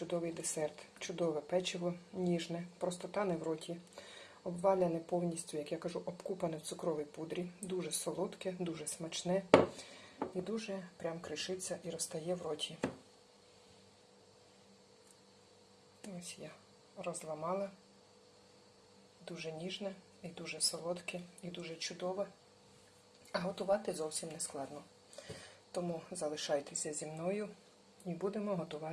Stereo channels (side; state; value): both; identical; correlation 1.00